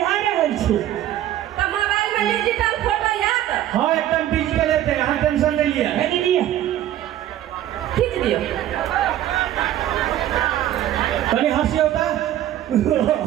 रहल छी। तो मोबाइल में डिजिटल फोटो याद हाँ एकदम डिजिटल है अहाँ टेंशन नहीं लिया। है दीदी खींच दियो। तनी हंसी होता।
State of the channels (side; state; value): left; quieter; 12.5 dB